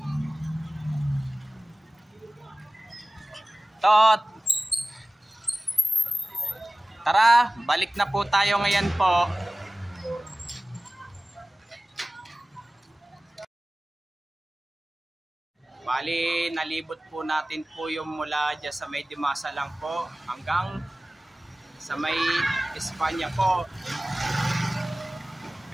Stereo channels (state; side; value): normal; both; correlation 0.97